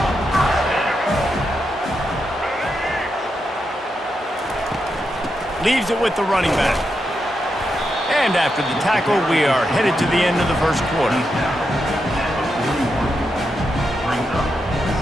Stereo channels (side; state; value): both; normal; correlation 0.85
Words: Leaves it with the running back. And after the tackle, we are headed to the end of the first quarter.